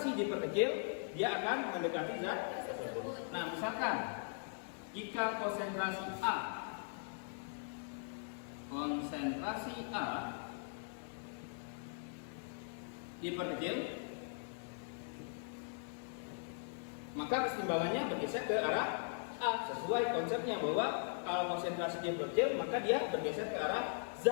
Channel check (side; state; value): right; silent; digital silence